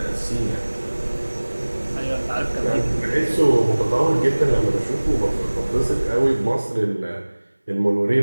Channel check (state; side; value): inverted; both; correlation -1.00